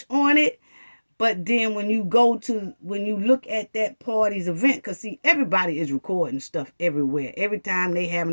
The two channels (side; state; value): both; inverted; correlation -1.00